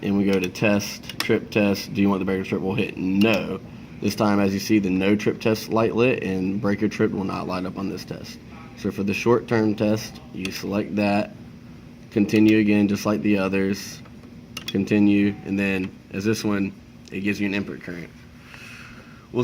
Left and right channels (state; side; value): identical; both; correlation 1.00